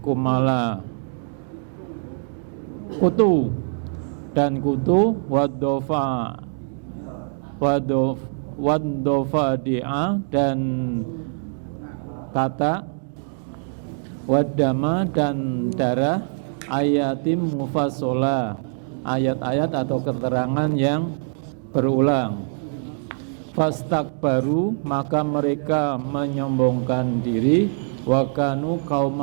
kutu dan kutu, wadofa dia dan kata, wadama dan darah, ayatim mufasola, ayat-ayat atau keterangan yang berulang. Fastakbaru, maka mereka menyombongkan diri, wakanu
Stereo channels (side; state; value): left; silent; digital silence